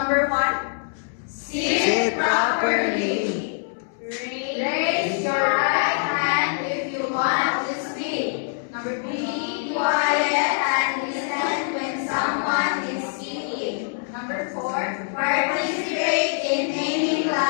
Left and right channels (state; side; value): silent; right; 63 dB below the other